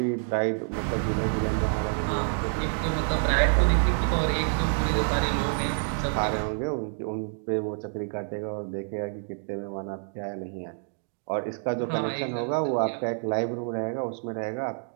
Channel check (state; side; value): silent; left; 59 dB below the other